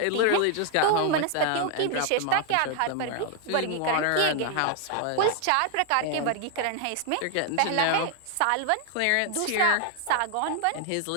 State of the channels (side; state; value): both; different; correlation 0.00